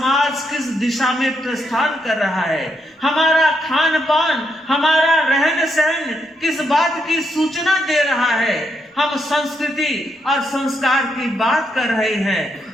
किस दिशा में प्रस्थान कर रहा है। हमारा खान पान, हमारा रहन सहन किस बात की सूचना दे रहा है? हम संस्कृति और संस्कार की बात कर रहे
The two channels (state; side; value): normal; both; correlation 0.79